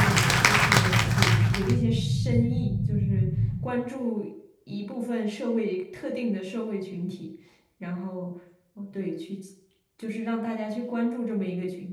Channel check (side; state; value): both; identical; correlation 1.00